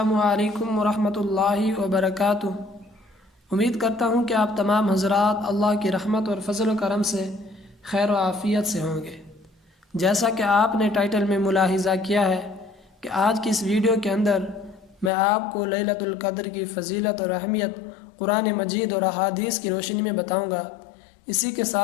علیکم ورحمۃ اللہ وبرکاتہ۔ امید کرتا ہوں کہ آپ تمام حضرات اللہ کی رحمت اور فضل و کرم سے خیر و عافیت سے ہوں گے۔ جیسا کہ آپ نے ٹائٹل میں ملاحظہ کیا ہے کہ آج کی اس ویڈیو کے اندر میں آپ کو لیلۃ القدر کی فضیلت اور اہمیت قرآن مجید اور احادیث کی روشنی میں بتاؤں گا۔ اسی کے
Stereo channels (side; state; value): right; drops out; at 15.1 s